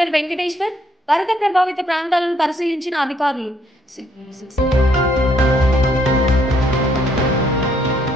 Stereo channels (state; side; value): normal; both; correlation 0.69